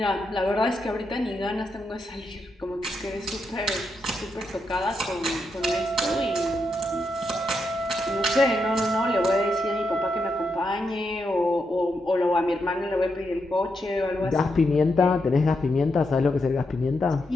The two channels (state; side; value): normal; both; correlation 0.83